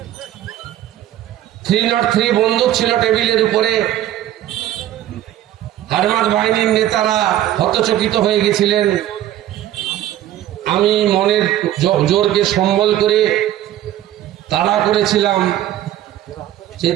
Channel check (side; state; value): left; quieter; 12.8 dB